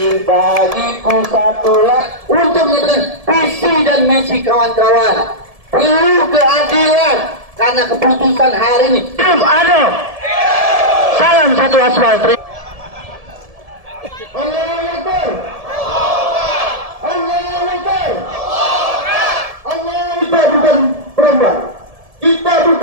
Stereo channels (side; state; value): left; late; 1.7 ms